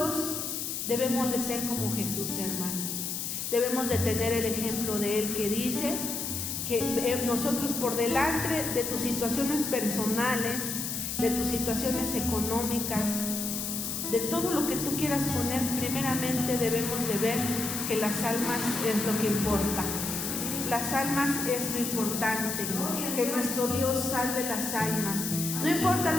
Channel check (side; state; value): left; noise; hiss, 3 dB below the sound